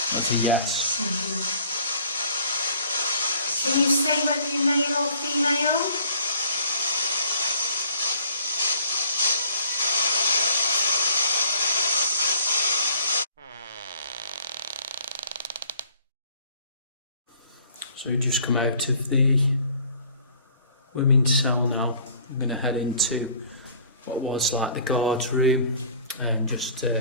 That's a yes. Did you say whether you're male or female? So we just come out of the women's cell now. I'm going to head into what was like the guard's room and just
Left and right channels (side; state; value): both; inverted; correlation -0.54